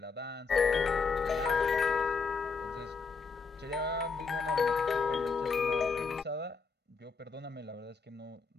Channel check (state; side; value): quieter; right; 4.8 dB